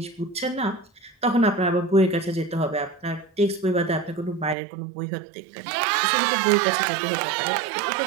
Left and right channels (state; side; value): drops out; left; at 4.5 s